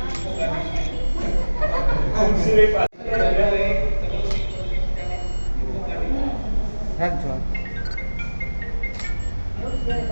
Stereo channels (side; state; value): both; inverted; correlation -1.00